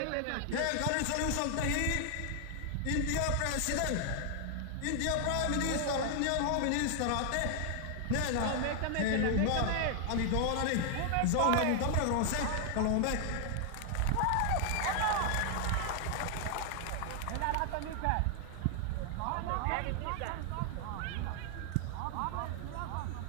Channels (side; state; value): both; different; correlation 0.00